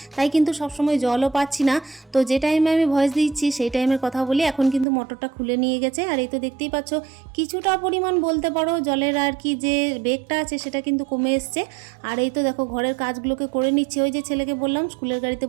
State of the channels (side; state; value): left; drops out; at 4.9 s